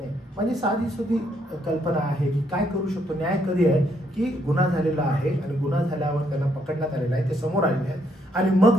म्हणजे साधी सुधी कल्पना आहे की काय करू शकतो. न्याय कधी आहे की गुन्हा झालेला आहे आणि गुन्हा झाल्यावर त्यांना पकडण्यात आलेला आहे, ते समोर आलेले आहेत आणि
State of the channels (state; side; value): normal; both; correlation 0.73